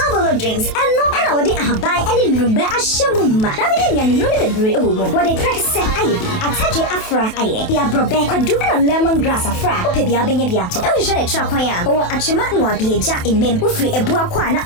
drinks and no ana wodi ahabai any lumbe ashemuma. Na bidi ya ni no be bre omo. Wodi press aye ataje afra aye. Dia brobe kwadu na lemongrass afra. Ope bia benye bia to. E hwe tra kwan ya. O achema no abieja emem. Ufri ebua kwa na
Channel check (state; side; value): late; right; 28 ms